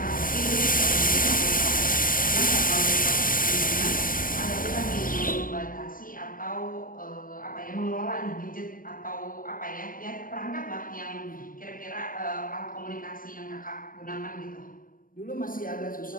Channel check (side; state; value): right; late; 0.40 ms